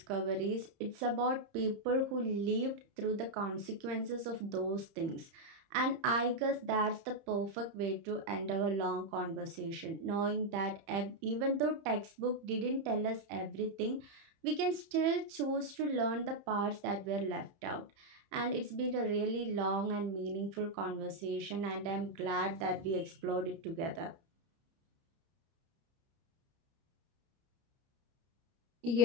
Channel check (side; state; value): left; late; 30 ms